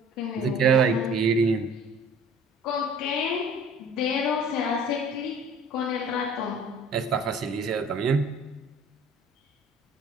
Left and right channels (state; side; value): normal; both; correlation 0.48